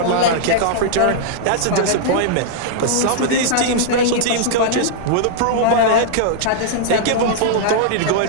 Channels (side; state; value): both; different; correlation -0.01